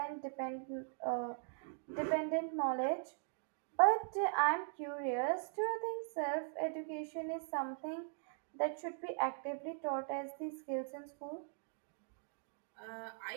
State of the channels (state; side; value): silent; left; digital silence